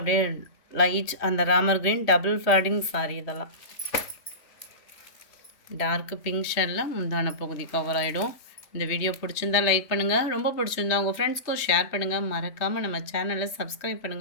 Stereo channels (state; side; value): late; right; 3.2 ms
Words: லைட் அந்த Ramar green double fading sorry. இதெல்லாம் டார்க்கு பிங்க் ஷேடில் முந்தான பகுதி கவர் ஆகிடும். இந்த வீடியோ பிடிச்சிருந்தா லைக் பண்ணுங்கள். ரொம்ப பிடிச்சிருந்தா உங்கள் ஃப்ரெண்ட்ஸ்க்கும் ஷேர் பண்ணுங்கள். மறக்காமல் நம்ம சேனலை சப்ஸ்கிரைப்